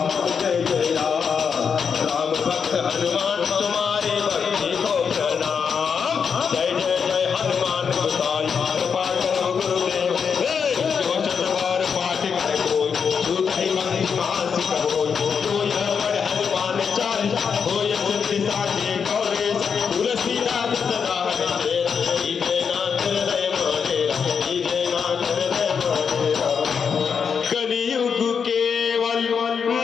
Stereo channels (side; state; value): right; quieter; 6.4 dB